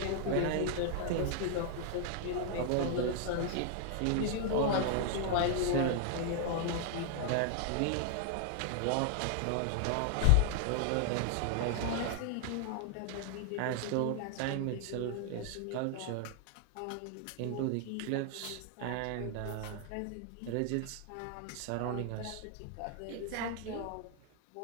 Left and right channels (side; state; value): both; different; correlation 0.00